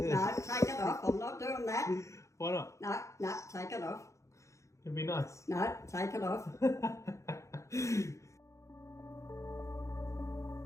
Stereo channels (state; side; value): late; right; 0.15 ms